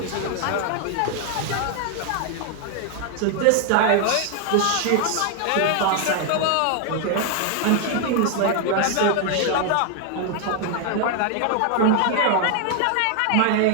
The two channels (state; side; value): different; both; correlation 0.00